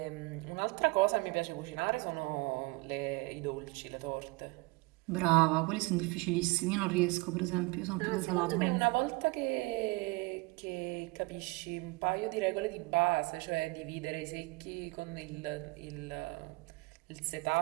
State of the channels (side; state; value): left; quieter; 25.6 dB